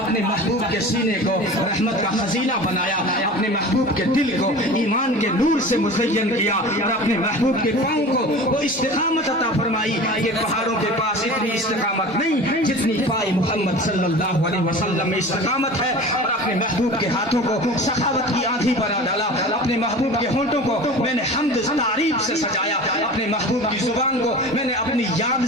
محبوب کے سینے کو رحمت کا خزینہ بنایا، اپنے محبوب کے دل کو ایمان کے نور سے مزین کیا، اور اپنے محبوب کے پاؤں کو وہ استقامت عطا فرمائی۔ یہ پہاڑوں کے پاس اتنی استقامت نہیں جتنی پائے محمد صلی اللہ علیہ وسلم میں استقامت ہے، اور اپنے محبوب کے ہاتھوں کو سخاوت کی آندھی بنا ڈالا، اپنے محبوب کے ہونٹوں کو میں نے حمد تعریف سے سجایا، اپنے محبوب کی زبان کو میں نے اپنی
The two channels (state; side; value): normal; both; correlation 0.37